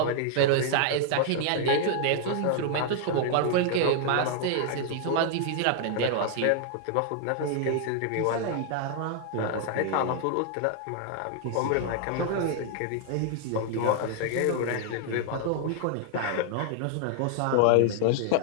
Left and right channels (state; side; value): different; both; correlation 0.00